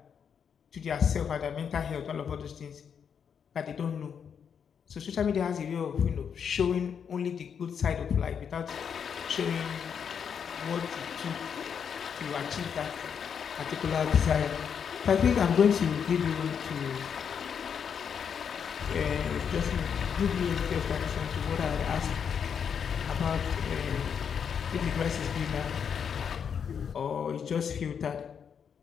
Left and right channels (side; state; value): right; quieter; 7.3 dB